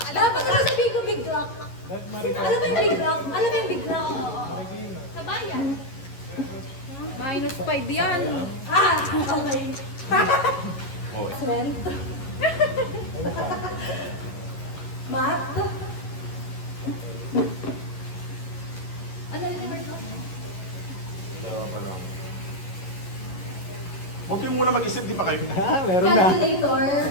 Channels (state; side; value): late; right; 11 ms